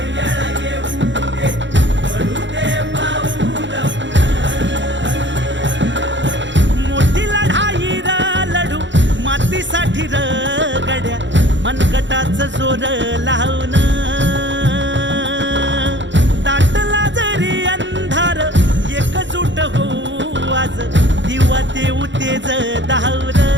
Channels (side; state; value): left; late; 0.54 ms